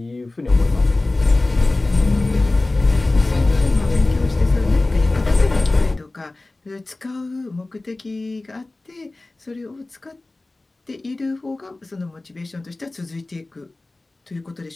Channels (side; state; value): right; quieter; 3.0 dB